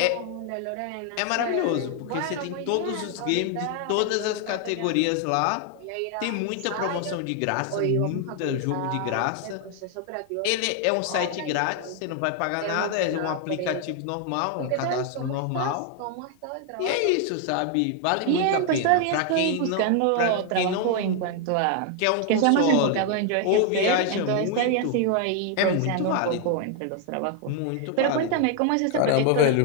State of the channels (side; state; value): both; different; correlation 0.00